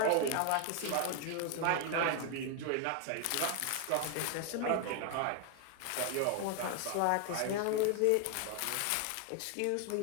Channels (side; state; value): both; different; correlation 0.01